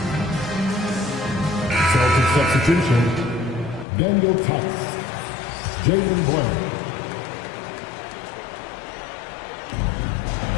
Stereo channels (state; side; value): drops out; right; at 3.9 s